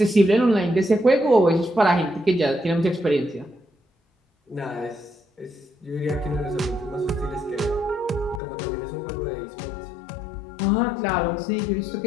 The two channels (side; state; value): right; drops out; at 8.4 s